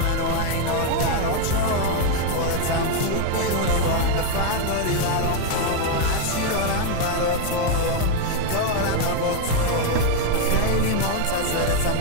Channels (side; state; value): both; different; correlation 0.01